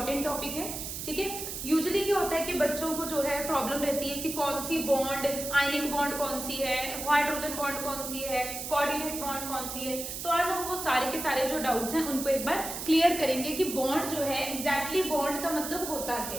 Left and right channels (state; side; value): noise; right; hiss, 6 dB below the sound